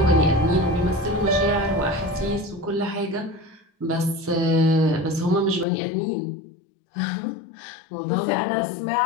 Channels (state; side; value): drops out; right; at 5.7 s